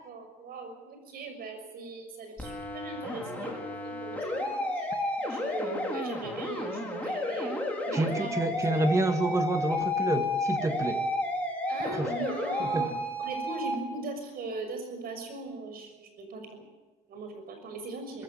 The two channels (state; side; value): normal; both; correlation 0.64